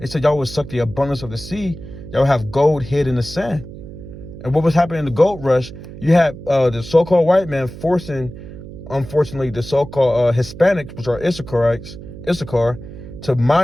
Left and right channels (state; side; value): noise; right; hum, 14 dB below the sound